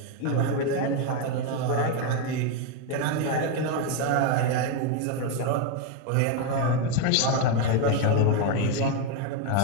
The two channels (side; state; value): both; different; correlation 0.01